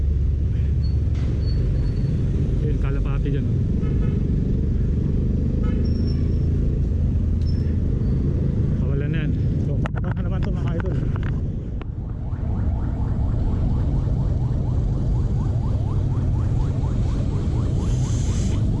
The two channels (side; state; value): both; identical; correlation 1.00